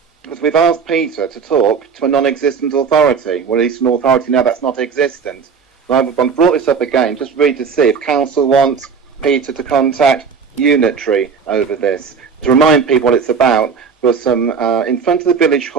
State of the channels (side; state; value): left; quieter; 5.9 dB